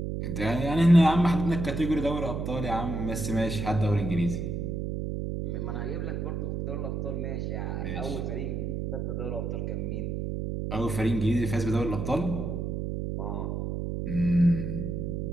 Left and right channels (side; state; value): right; noise; hum, 3 dB below the sound